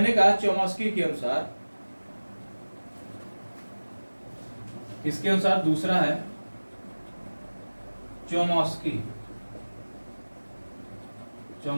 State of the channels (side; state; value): both; inverted; correlation -1.00